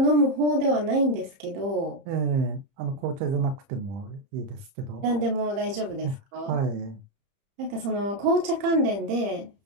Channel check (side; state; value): left; late; 30 ms